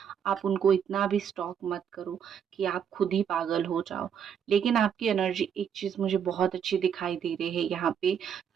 आप उनको इतना भी स्टॉक मत करो कि आप खुद ही पागल हो जाओ। लेकिन आपकी एनर्जी एक चीज़ मुझे बहुत अच्छी दिखाई दे रही है यहाँ पे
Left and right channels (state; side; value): quieter; left; 8.0 dB